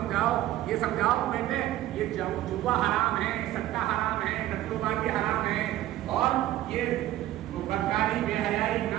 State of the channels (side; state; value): left; quieter; 14.4 dB